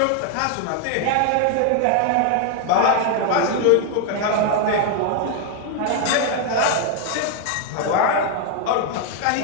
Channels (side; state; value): both; different; correlation 0.01